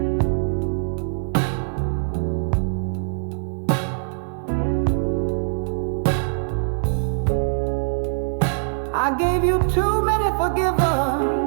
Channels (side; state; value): left; silent; digital silence